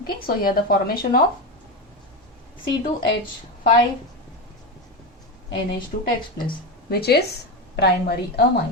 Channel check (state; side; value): normal; both; correlation 0.16